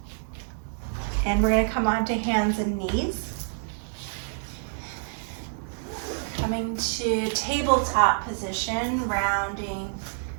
And we're going to come onto hands and knees. Coming to tabletop position, rounding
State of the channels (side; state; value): left; silent; digital silence